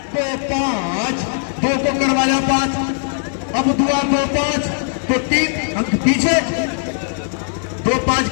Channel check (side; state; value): right; silent; digital silence